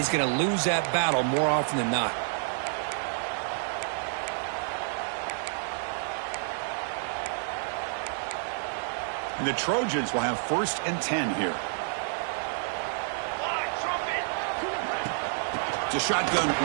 going to lose that battle more often than not. And the Trojans will have 1st and 10 here. It's a shotgun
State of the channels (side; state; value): left; silent; digital silence